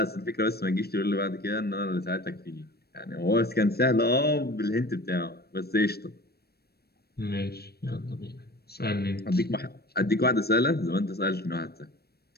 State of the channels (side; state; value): right; late; 0.46 ms